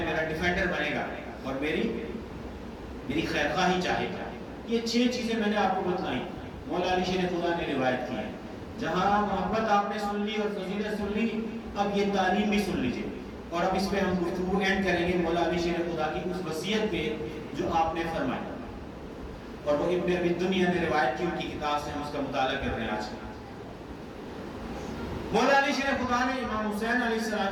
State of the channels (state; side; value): identical; both; correlation 1.00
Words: میرا ڈیفینڈر بنے گا اور میری خیر خواہی چاہے گا۔ یہ 6 چیزیں میں نے آپ کو بتلائیں، مولا علی شیر خدا نے روایت کی ہے۔ جہاں محبت آپ نے سن لی اور فضیلت سن لی، اب یہ تعلیم بھی سن لیجئے، اور اب اس پہ ہم گفتگو اینڈ کریں گے مولا علی شیر خدا کی اس وصیت پہ جو آپ نے فرمائی، اور وہ ابن ابی دنیا نے روایت کی، ان کی کتاب سے ہم اس کا مطالعہ کر رہے ہیں آج۔ مولا علی شیر خدا نے امام حسین علیہ